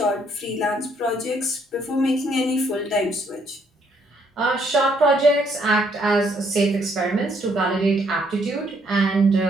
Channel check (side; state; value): both; normal; correlation 0.69